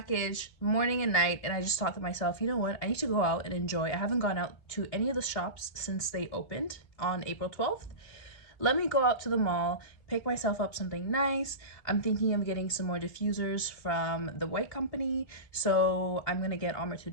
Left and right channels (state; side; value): late; right; 3.3 ms